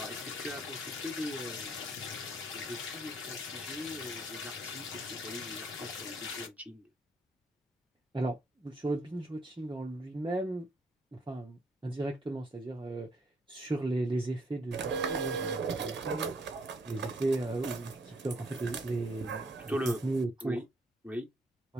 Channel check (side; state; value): both; normal; correlation 0.68